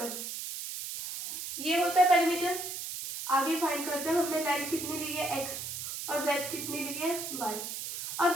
है, ये होता है पेरीमीटर। आगे फाइंड करते हैं, हमने लेंथ कितनी ली है x और ब्रेथ कितनी ली है y। अब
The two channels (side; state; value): right; noise; hiss, 6 dB below the sound